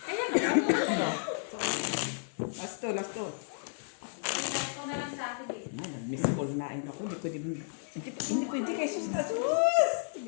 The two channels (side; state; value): right; silent; digital silence